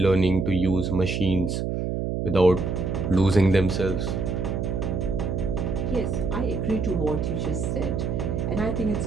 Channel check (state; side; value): noise; right; hum, 1 dB below the sound